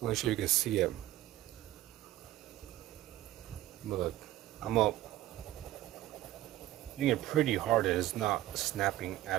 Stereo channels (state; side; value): quieter; left; 15.0 dB